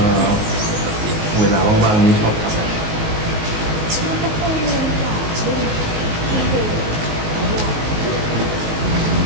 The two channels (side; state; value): left; late; 18 ms